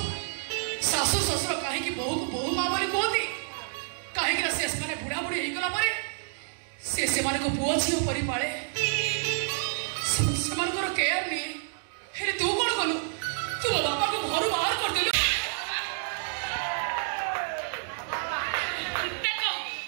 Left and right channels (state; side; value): silent; left; digital silence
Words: ଶାଶୁ ଶ୍ୱଶୁର କାହିଁକି ବୋହୂକୁ ବୋହୂ ମା ବୋଲି କୁହନ୍ତି? କାହିଁକି ନା ସେମାନେ ବୁଢା ବୁଢୀ ହେଇଗଲା ପରେ ସେ ସେମାନଙ୍କୁ ପୁଅ ଝିଅ ପରି ପାଳେ, ସେମାନଙ୍କର କେୟାର ନିଏ। ହେଲେ ତୁ କଣ କଲୁ? ତୁ ମୋ ବାପାକୁ ଘରୁ ବାହାର କରିଦେଲୁ।